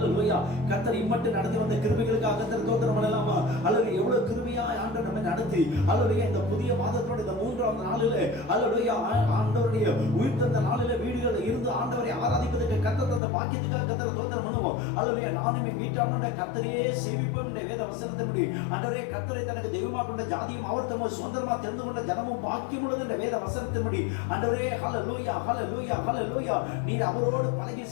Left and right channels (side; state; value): right; drops out; at 13.2 s